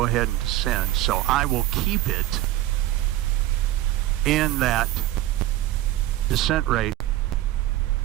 ahead and descend. So I will keep it in that descent rate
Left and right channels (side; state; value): left; quieter; 14.8 dB